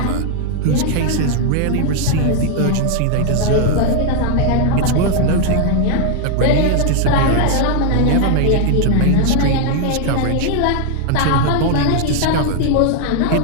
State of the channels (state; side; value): different; both; correlation 0.00